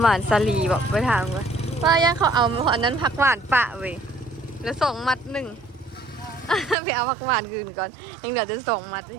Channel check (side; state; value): left; drops out; at 6.8 s